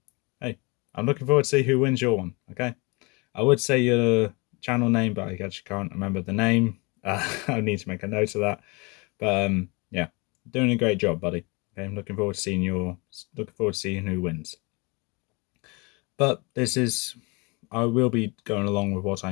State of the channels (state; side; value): quieter; right; 28.4 dB